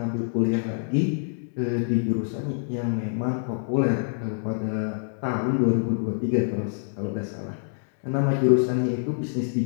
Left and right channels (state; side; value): silent; right; digital silence